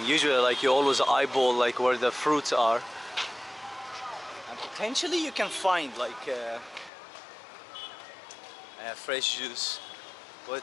Usually like you always eyeball like where the fruits are, and potentially you can find like fresh juice,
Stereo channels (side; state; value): right; drops out; at 6.9 s